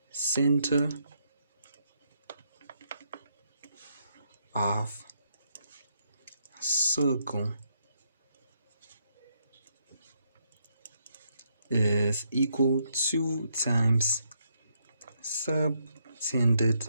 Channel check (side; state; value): both; inverted; correlation -0.75